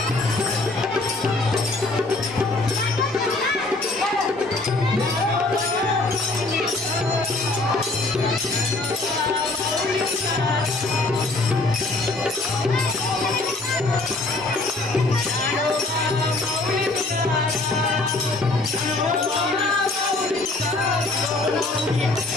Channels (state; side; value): quieter; right; 3.1 dB